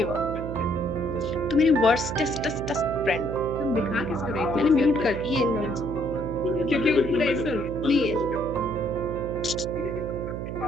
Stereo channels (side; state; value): right; noise; hum, 6 dB below the sound